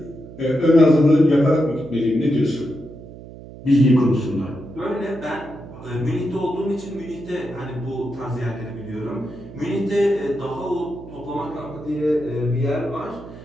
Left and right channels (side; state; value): right; noise; hum, 16 dB below the sound